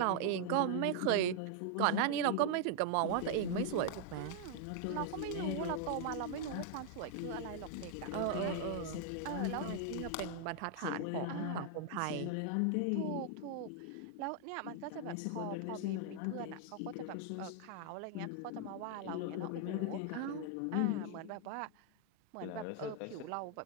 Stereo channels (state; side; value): different; both; correlation 0.00